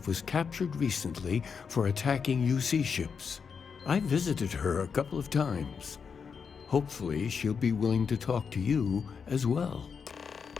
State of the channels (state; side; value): quieter; right; 6.1 dB